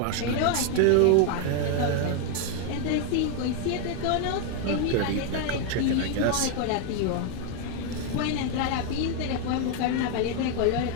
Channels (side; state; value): both; different; correlation 0.01